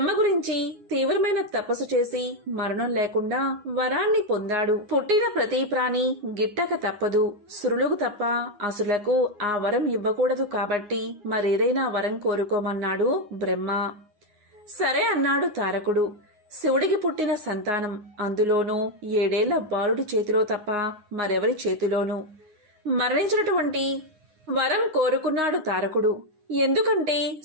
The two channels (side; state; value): left; late; 9.6 ms